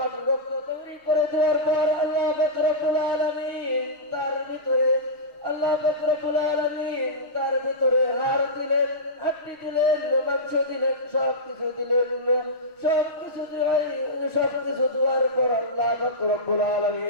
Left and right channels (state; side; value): late; right; 6.3 ms